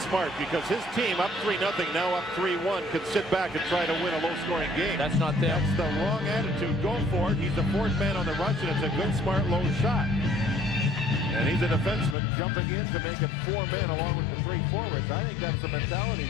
smart because his team up 3-0, now up 3-1, could sit back and try to win a low-scoring game. That's not them. That's the wrong attitude. Go for it. He's the 4th man on the rush, and it's a good, smart, low shot. And he's a defenseman jumping in to make it 4 men along with the 3 forwards. I think that's the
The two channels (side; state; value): right; drops out; at 12.2 s